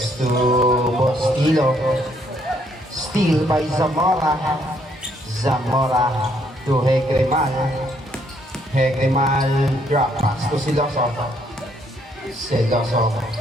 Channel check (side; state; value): both; normal; correlation 0.69